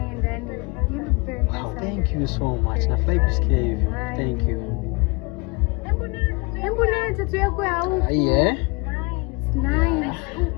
yani. You look very handsome. Thank you so much. Nafurahi kusikia hivyo. Thank you. Hebu nini tattoo yako ya huko? Yeah. Nice.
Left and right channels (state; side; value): quieter; right; 28.0 dB